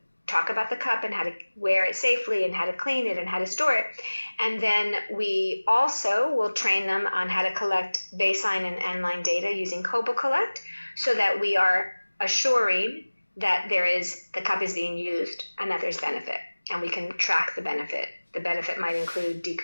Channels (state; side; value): inverted; both; correlation -1.00